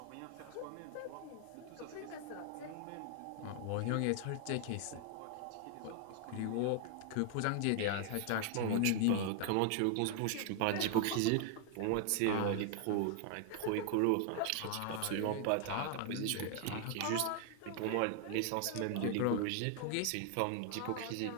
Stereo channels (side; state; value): both; different; correlation 0.00